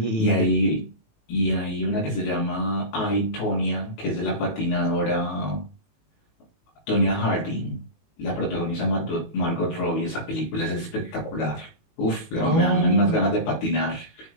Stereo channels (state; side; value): late; right; 19 ms